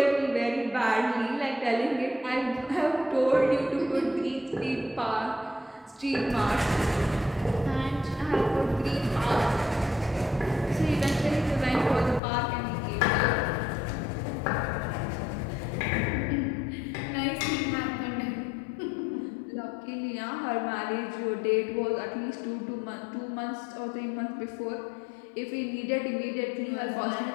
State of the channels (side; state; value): right; drops out; at 12.2 s